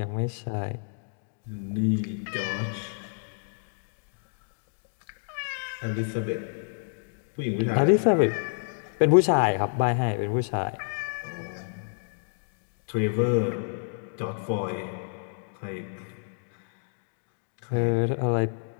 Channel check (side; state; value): right; silent; digital silence